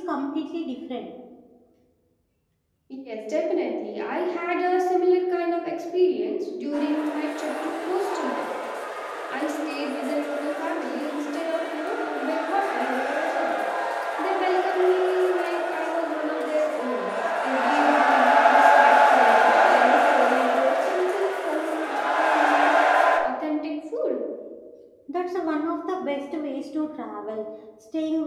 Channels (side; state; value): both; identical; correlation 1.00